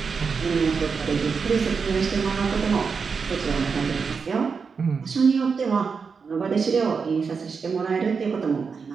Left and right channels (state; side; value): quieter; left; 5.4 dB